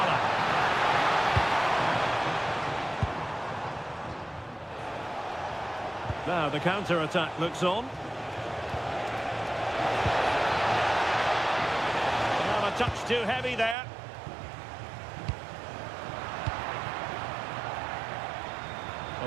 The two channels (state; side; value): drops out; left; at 13.8 s